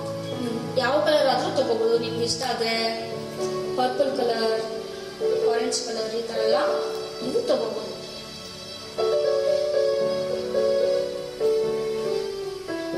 ಯಾವ ಕಲರ್ ಆದ್ರೂ ತಗೋಬಹುದು. ನಿಮ್ಗೆ ಇಷ್ಟ ಆದ್ರೆ ಪರ್ಪಲ್ ಕಲರ್, ಆರೆಂಜ್ ಕಲರ್ ಈ ತರ ಎಲ್ಲ ನೀವು ತಗೋಬಹುದು.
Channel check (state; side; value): identical; both; correlation 1.00